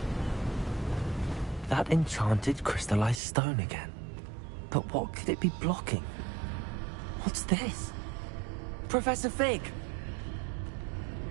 That enchanted crystallized stone again. But what could it be blocking? What's this? Professor Fig!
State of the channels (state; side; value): drops out; left; at 3.2 s